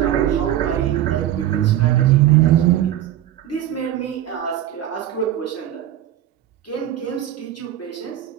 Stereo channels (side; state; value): left; quieter; 12.1 dB